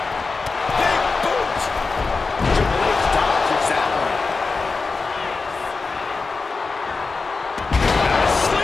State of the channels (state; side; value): quieter; right; 4.2 dB